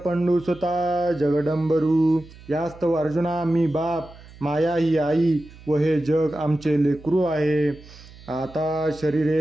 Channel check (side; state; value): right; noise; hum, 20 dB below the sound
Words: पंडुसुता जगदंबरू। यास्तव अर्जुना मी बाप माया ही आई व हे जग आमचे लेकरू आहे। आता